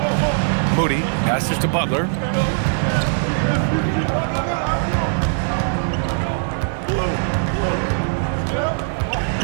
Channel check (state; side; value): silent; left; digital silence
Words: Moody passes to Butler.